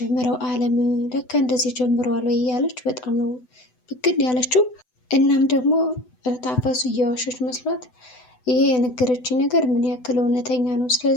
አለም ለካ እንደዚህ ጀምረዋል ወይ እያለች በጣም ነው ብግን ያለችው። እናም ደግሞ ታፈሱ እየዋሸች መስሏት ይሄ የነገረችኝ ነገር ምን ያክል እውነተኛ ነው፣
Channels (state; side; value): late; right; 8.0 ms